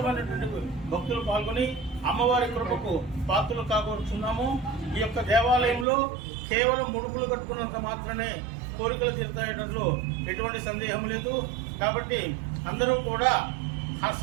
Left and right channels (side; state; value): left; drops out; at 5.9 s